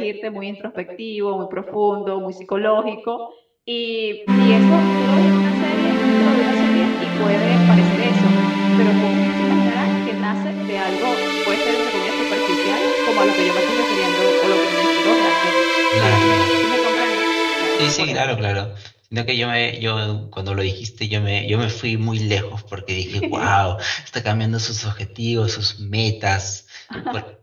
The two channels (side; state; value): both; identical; correlation 1.00